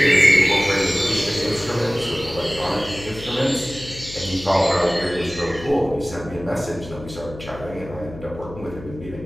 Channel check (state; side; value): noise; left; hum, 14 dB below the sound